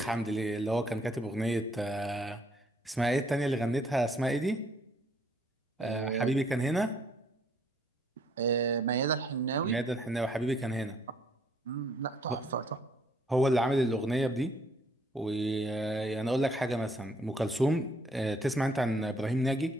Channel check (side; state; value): both; normal; correlation 0.66